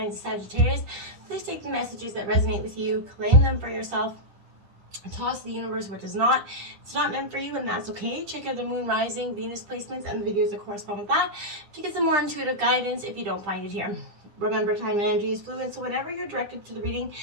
of Sagittarius. Please take the messages that resonate with you, claim them for yourself, and toss the universe what does not. It's not meant for you, and that's okay. Check out the Moon, Rising, Venus placements and the videos that correspond with that to get some more intuitive guidance if you don't find it here. Remember, time and energy is fluid, so whenever you're directed to the reading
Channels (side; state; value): left; late; 10 ms